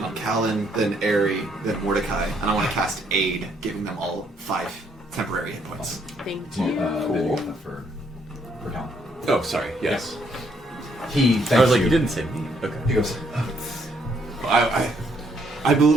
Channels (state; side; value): normal; both; correlation 0.70